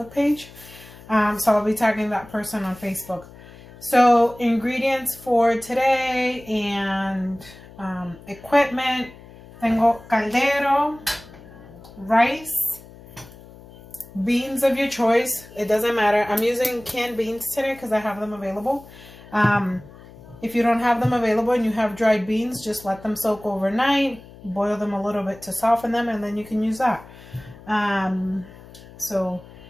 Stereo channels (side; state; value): left; noise; hum, 20 dB below the sound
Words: page. So I'll be tagging that person on Facebook. So ingredients for today and equipment. Tengo caldero, rice, beans of your choice. It doesn't matter. I'm using canned beans today because I have them available. If you don't have them available and you have dried beans, just let them soak overnight. Boil them a little bit to soften them, and then you can use that. So